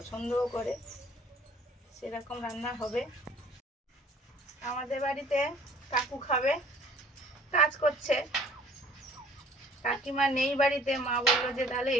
করে, সেরকম রান্না হবে। আমাদের বাড়িতে কাকু খাবে, কাজ করছে, কাকিমা নেই বাড়িতে, মা বললো যে তাহলে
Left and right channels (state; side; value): normal; both; correlation 0.54